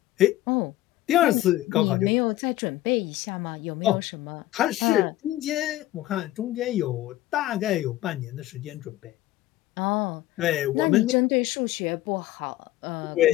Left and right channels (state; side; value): quieter; right; 15.5 dB